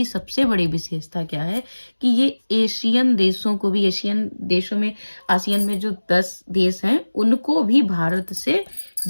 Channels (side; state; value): both; inverted; correlation -1.00